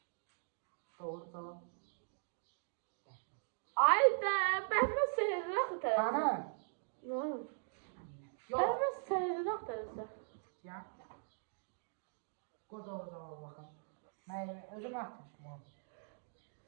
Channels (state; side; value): silent; left; digital silence